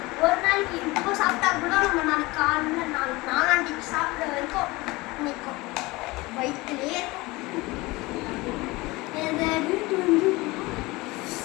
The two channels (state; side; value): quieter; right; 22.0 dB